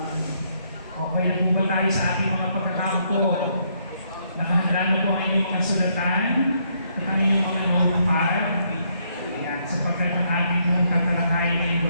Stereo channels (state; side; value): inverted; both; correlation -0.72